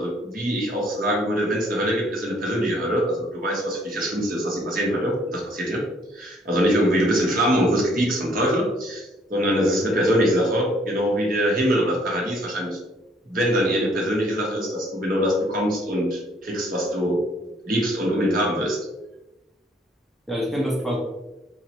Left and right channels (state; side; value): normal; both; correlation 0.63